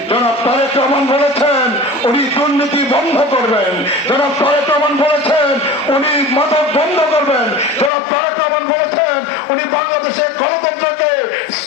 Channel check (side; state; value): right; drops out; at 7.9 s